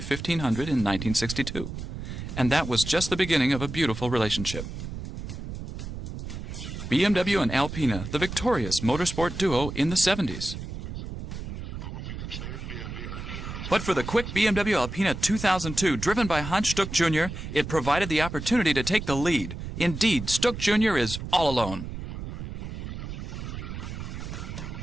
in 1962. And that was just the beginning of a beautiful relationship. BMW and Alpina, the victorious motorsport duo in the 70s. But for the quick BMW Alpina 2002, driven by Hans Stuck Jr., it provided the opportunity to take the lead. Indeed, Stuck Jr. is all alone.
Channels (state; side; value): noise; right; rumble, 7 dB below the sound